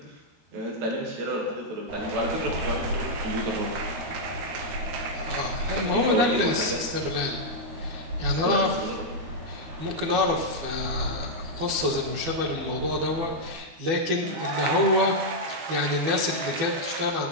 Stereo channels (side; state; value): left; late; 12 ms